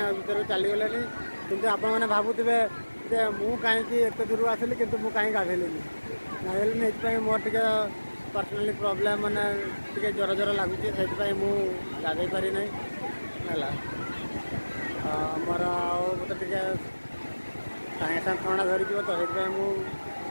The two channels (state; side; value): inverted; both; correlation -1.00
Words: ଭିତରୁ ଚାଲିଗଲେଣି, କିନ୍ତୁ ଆପଣମାନେ ଭାବୁଥିବେ ଯେ ମୁଁ କାହିଁକି ଏତେ ଦୂରରୁ ଆସିଲି କିନ୍ତୁ ମୁଁ କାହିଁକି ଗାଧେଇଲିନି। ଗାଧେଇଲିନି ଏଥିପାଇଁ ମୋର ଟିକେ ପର୍ସନାଲି ପ୍ରୋବ୍ଲେମ୍, ମାନେ ଟିକେ ଜ୍ୱର ଜ୍ୱର ଲାଗୁଛି, ସେଥିପାଇଁ ମୁଁ ଗାଧେଇ ପାରିନାହିଁ ହେଲା। ମୋର ଆଉ ମୋତେ ଟିକେ ସାଙ୍ଗେ ସାଙ୍ଗେ ଥଣ୍ଡା ଧରିଯିବ ତ, ସେଥିପାଇଁ ମୁଁ